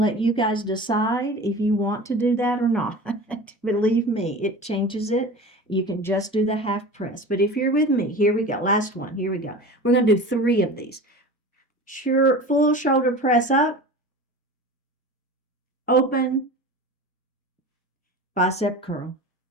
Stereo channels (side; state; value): both; normal; correlation 0.35